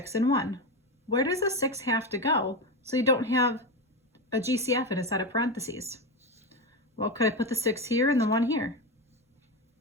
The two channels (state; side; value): normal; both; correlation 0.16